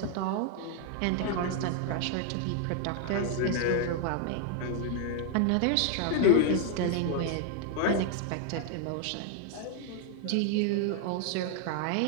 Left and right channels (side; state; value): both; different; correlation 0.00